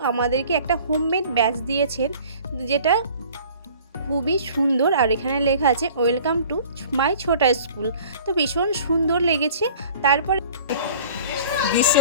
আমাদেরকে একটা হোমমেড ব্যাচ দিয়েছেন, যেটা খুবই সুন্দর। আর এখানে লেখা আছে ওয়েলকাম টু মাই ছোটা স্কুল। তো ভীষণ সুন্দর লেগেছে। তারপরে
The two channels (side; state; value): both; inverted; correlation -0.48